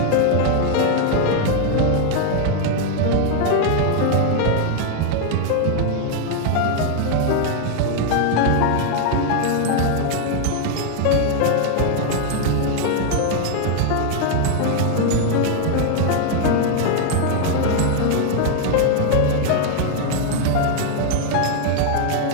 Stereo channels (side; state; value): both; different; correlation 0.00